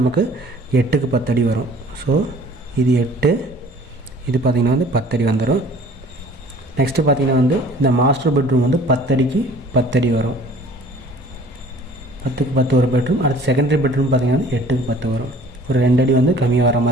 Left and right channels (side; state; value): both; normal; correlation 0.51